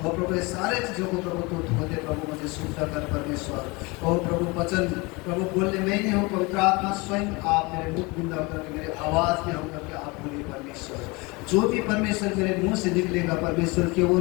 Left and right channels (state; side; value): quieter; right; 25.8 dB